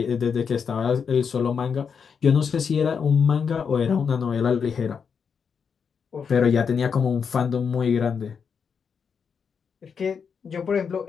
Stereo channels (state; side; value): quieter; right; 6.4 dB